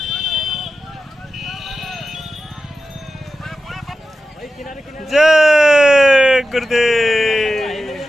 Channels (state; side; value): normal; both; correlation 0.92